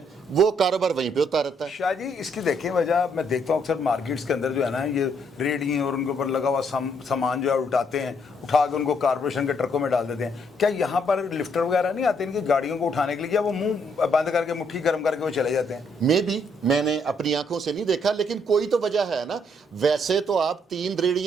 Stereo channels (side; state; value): both; normal; correlation 0.71